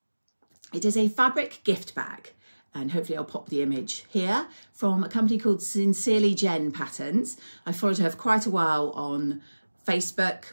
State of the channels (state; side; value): inverted; both; correlation -1.00